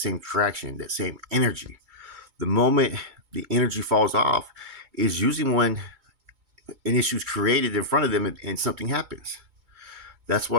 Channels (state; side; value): late; left; 2.2 ms